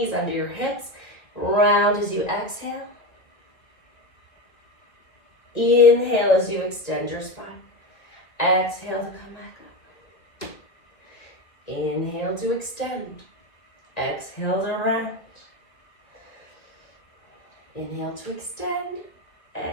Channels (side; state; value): right; late; 1.7 ms